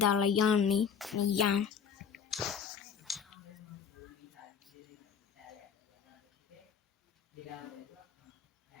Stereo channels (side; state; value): right; quieter; 7.1 dB